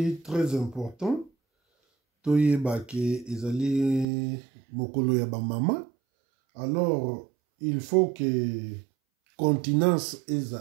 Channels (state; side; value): drops out; left; at 4.0 s